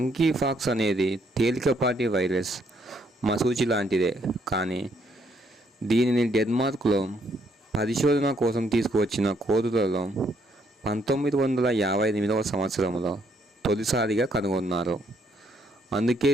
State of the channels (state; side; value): normal; both; correlation 0.71